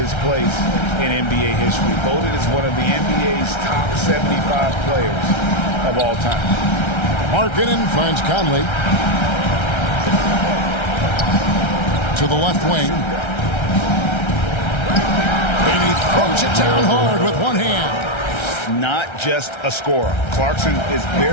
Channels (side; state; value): right; late; 1.3 ms